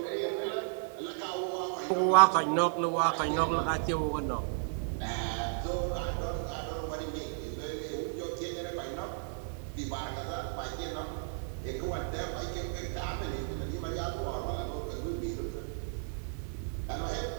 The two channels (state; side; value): silent; left; digital silence